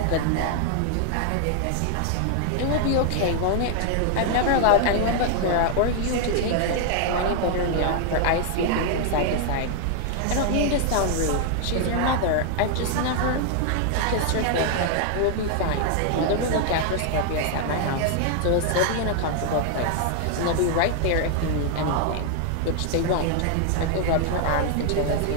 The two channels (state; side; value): different; both; correlation 0.00